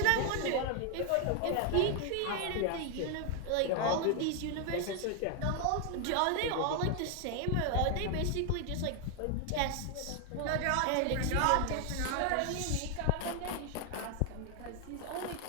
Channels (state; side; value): different; both; correlation 0.00